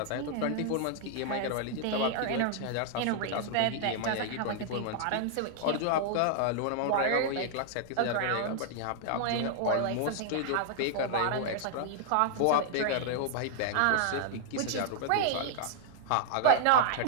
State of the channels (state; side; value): different; both; correlation 0.00